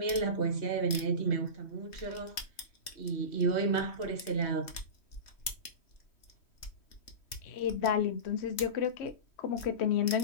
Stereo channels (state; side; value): late; right; 3.3 ms